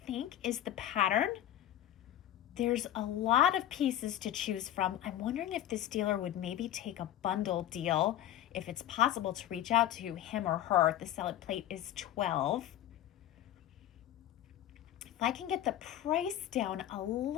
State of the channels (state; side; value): quieter; right; 12.3 dB